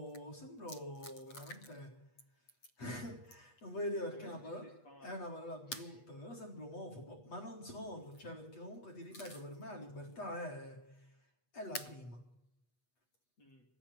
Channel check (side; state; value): right; late; 8.2 ms